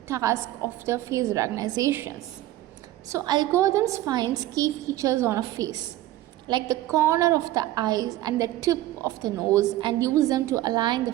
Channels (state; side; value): quieter; left; 14.9 dB